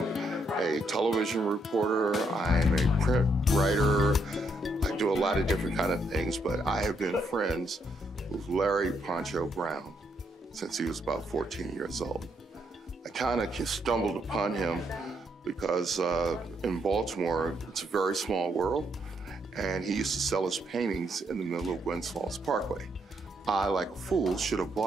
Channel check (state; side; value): normal; both; correlation 0.76